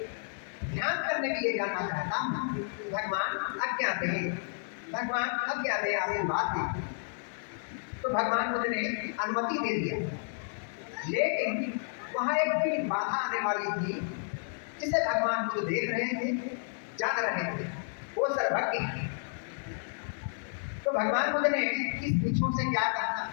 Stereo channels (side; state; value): right; silent; digital silence